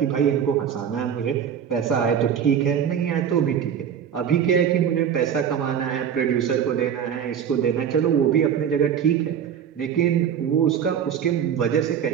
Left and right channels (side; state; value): left; quieter; 8.5 dB